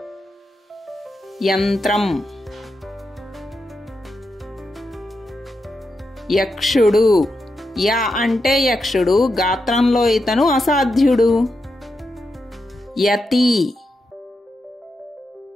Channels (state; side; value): normal; both; correlation 0.86